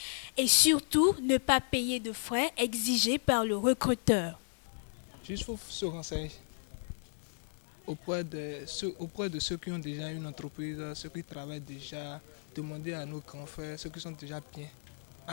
et surtout ne pas payer de frais exigés par le recruteur. Juste faut se renseigner auprès de ceux qui ont déjà une entreprise, ceux qui travaillent déjà, demander à nos grands frères, ceux qui sont déjà bien.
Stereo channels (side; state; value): right; silent; digital silence